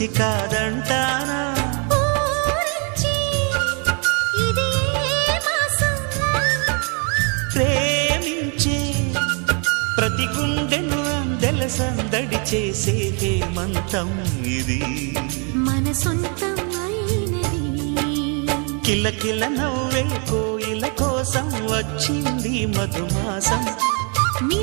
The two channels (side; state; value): left; quieter; 36.8 dB